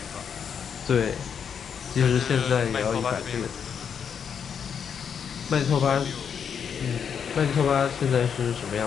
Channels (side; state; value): right; quieter; 7.3 dB